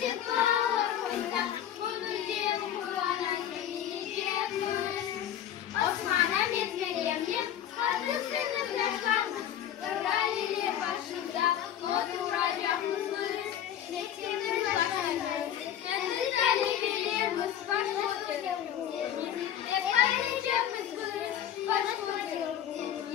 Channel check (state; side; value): quieter; right; 10.4 dB